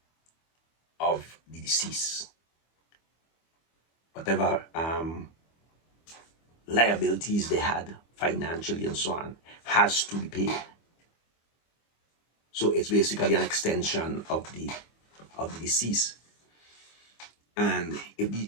of the deceased, whatever liabilities they had financially and so on has to be paid. So it's basically an extension of the deceased. And if the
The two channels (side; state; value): right; late; 25 ms